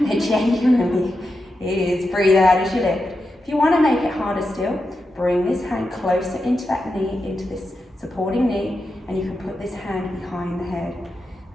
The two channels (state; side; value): normal; both; correlation 0.88